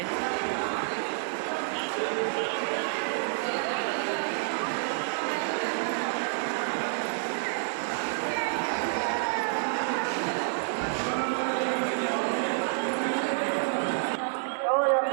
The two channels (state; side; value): silent; left; digital silence